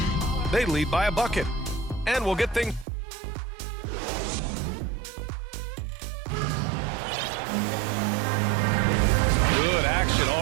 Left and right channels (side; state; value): left; drops out; at 2.9 s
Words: They lead by a bucket, and we'll get things. Good action